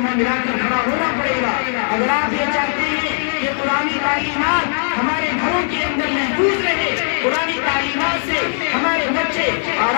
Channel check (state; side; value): silent; right; digital silence